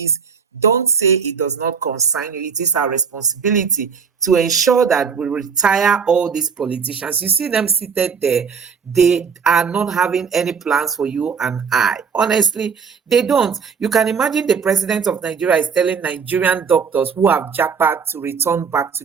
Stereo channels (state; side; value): quieter; left; 6.1 dB